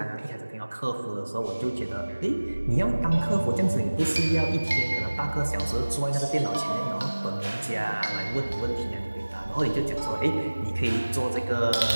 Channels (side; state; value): both; inverted; correlation -1.00